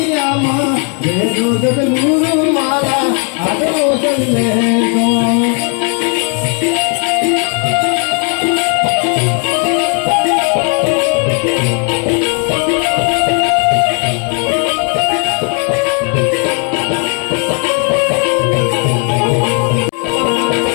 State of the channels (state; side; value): quieter; right; 39.1 dB